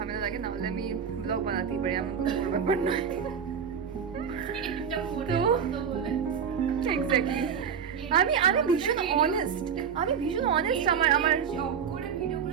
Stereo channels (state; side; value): quieter; left; 7.2 dB